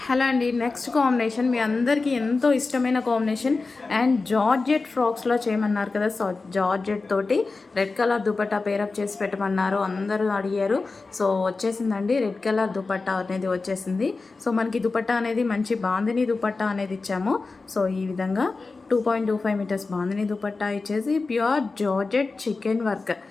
Hello అండి. Next combination మీ అందరికీ ఎంతో ఇష్టమైన కాంబినేషన్ అండ్ జార్జెట్ ఫ్రాక్స్లో చేయమన్నారు కదా. సో జార్జెట్ తోటి రెడ్ కలర్ దుపట్టా పేరప్ చేసి పెట్టమన్నారు, అందరూ అడిగారు. సో వచ్చేసిందండి, రెడ్ కలర్ దుపట్టా అనేది వచ్చేసింది. సో మనకి దుపట్టా అనేది మంచి బాందిని దుపట్టా అనేది ఇచ్చాము. సో ఈ విధంగా 2.25 మీటర్స్ బాందిని దుపట్టా ఇచ్చేసి pure georgette chicken work.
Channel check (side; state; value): right; quieter; 3.9 dB